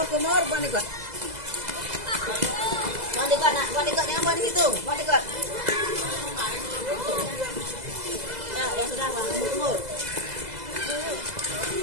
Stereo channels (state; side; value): late; left; 2.0 ms